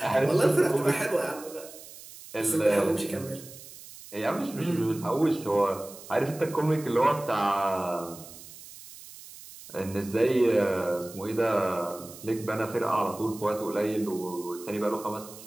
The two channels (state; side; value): noise; right; hiss, 17 dB below the sound